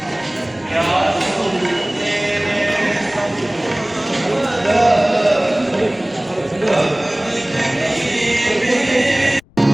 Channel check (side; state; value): left; noise; rumble, 29 dB below the sound